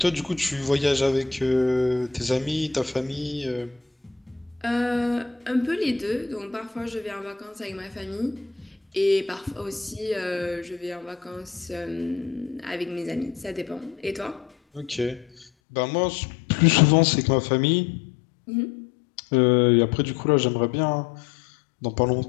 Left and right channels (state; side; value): drops out; right; at 15.5 s